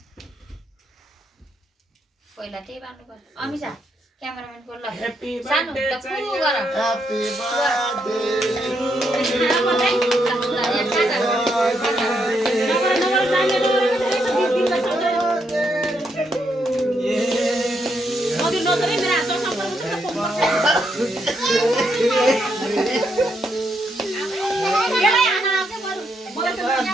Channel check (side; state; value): both; normal; correlation 0.78